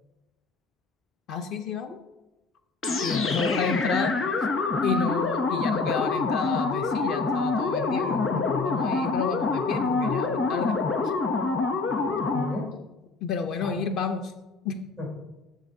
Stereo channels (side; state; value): right; quieter; 3.8 dB